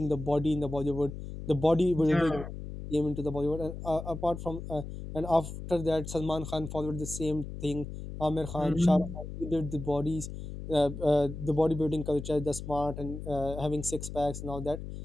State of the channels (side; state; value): left; noise; hum, 9 dB below the sound